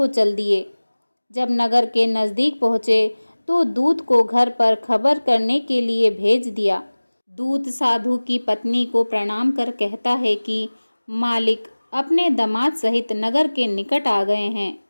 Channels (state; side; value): inverted; both; correlation -1.00